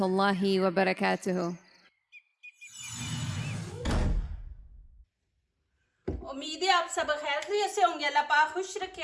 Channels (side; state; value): both; identical; correlation 1.00